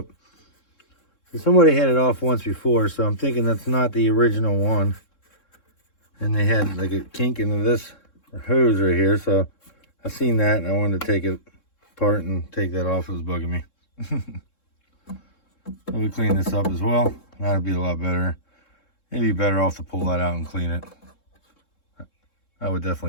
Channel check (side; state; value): right; late; 3.7 ms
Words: So somebody had it off once before, so I'm thinking that's not the original one. And they had like a kink into this hose right here, so I seen that and I wanted to take it apart and take that off. It was bugging me. So we clean this up as well. That'd be a lot better. It'd be better off to pull that out and clean it. I would